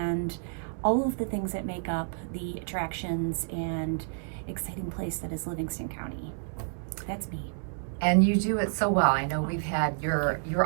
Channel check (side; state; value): left; silent; digital silence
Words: all of the things that make up the attractions and exciting place that is Livingston County. That's me. And you do it so well. I know we've had your